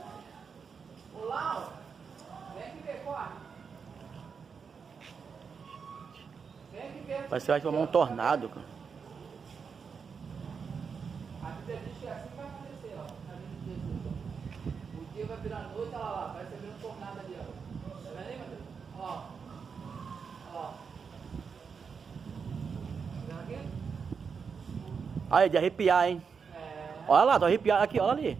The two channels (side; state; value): left; quieter; 5.9 dB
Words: Olá, vem aqui ver, corre. Vem aqui ver. Parece que vai formar um tornado, cara. A Bíblia diz que é assim que vai acontecer, ó. Na vida de Jesus. O dia vai virar noite, olha lá, vai ser um tornado ali, ó. Tá vendo aí, Matheus? Ó. Ó. Tá vendo aqui? Aí, de arrepiar, hein? É. Olha lá, tô arrepiado aqui, olha